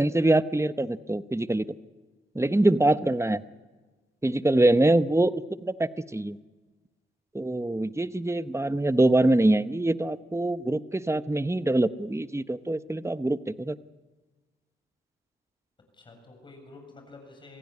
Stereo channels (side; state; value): both; normal; correlation 0.92